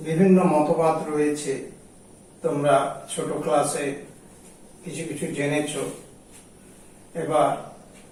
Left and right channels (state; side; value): identical; both; correlation 1.00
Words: বিভিন্ন মতবাদ রয়েছে। তোমরা ছোট ক্লাসে কিছু কিছু জেনেছো। এবার